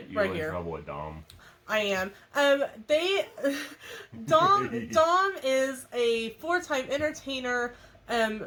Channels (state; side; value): identical; both; correlation 1.00